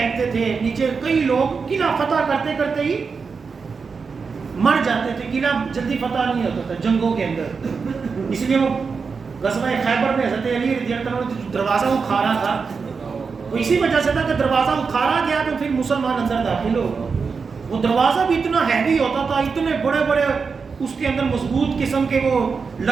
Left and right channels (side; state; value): left; quieter; 5.2 dB